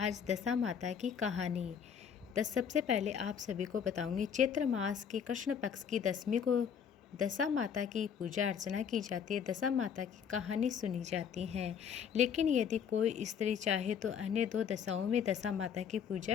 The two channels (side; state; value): right; quieter; 7.5 dB